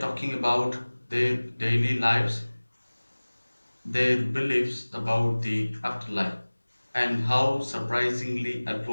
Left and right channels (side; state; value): both; inverted; correlation -1.00